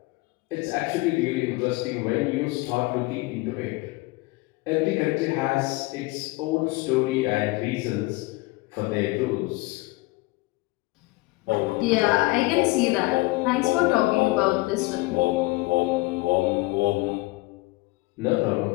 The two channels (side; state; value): right; quieter; 22.7 dB